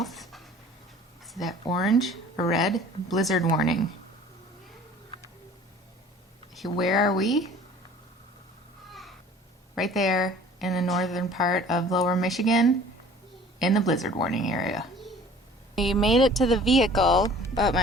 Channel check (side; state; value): both; normal; correlation 0.48